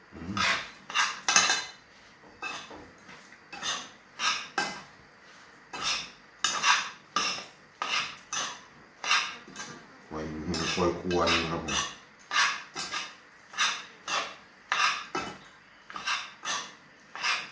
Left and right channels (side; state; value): both; identical; correlation 1.00